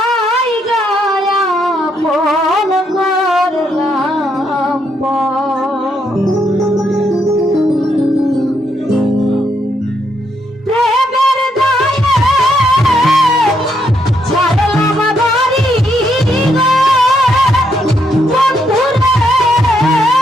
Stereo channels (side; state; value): both; normal; correlation 0.76